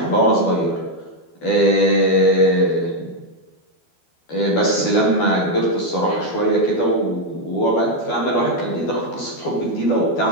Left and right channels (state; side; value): late; right; 12 ms